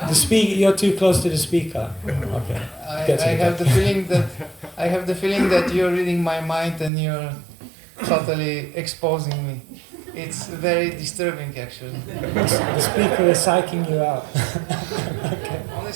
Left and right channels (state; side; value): drops out; left; at 6.9 s